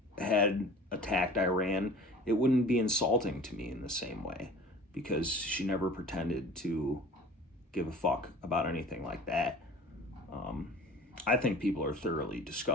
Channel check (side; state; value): both; normal; correlation 0.43